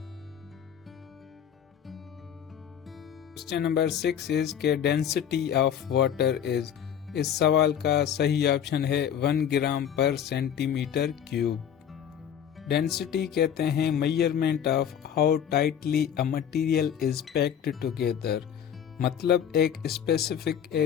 क्वेश्चन नंबर 6 इज के डेंसिटी ऑफ वाटर इज। इस सवाल का सही ऑप्शन है 1 ग्राम पर सेंटीमीटर क्यूब। डेंसिटी कहते हैं measurement of how tightly a material is packed together. मतलब एक स्पेसिफिक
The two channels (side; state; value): right; quieter; 8.9 dB